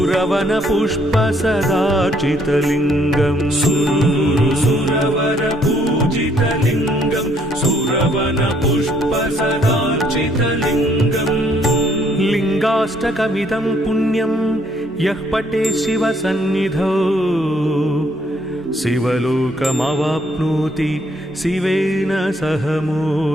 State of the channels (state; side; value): normal; both; correlation 0.67